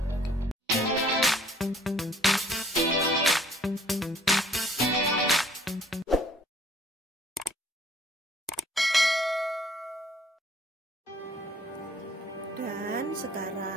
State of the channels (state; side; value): normal; both; correlation 0.58